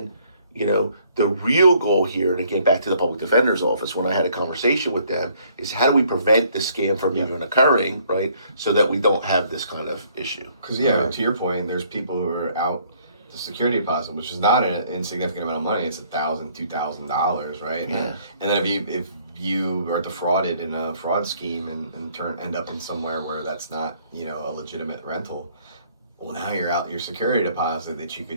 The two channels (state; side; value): inverted; both; correlation -0.63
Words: the real goal here, and again, back to the public defender's office, when I had a conversation with them, is how do we prevent this scam from even occurring, right? So that we don't have this kind of issue. Because, to your point, there's people who are out the security deposit, which is not an insignificant amount of money. It's $1,000, $2,000, right? Yeah. And then if you are defrauded in a fraud scheme and end up in somewhere where that's not, a legitimate rental, well, now you're out your security deposit that you